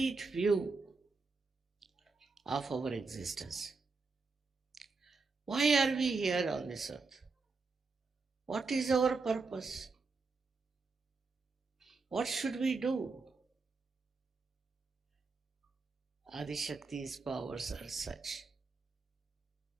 view of our existence. Why are we here on this earth? What is our purpose? What should we do? Adishakti's powers are such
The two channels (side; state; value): left; quieter; 4.2 dB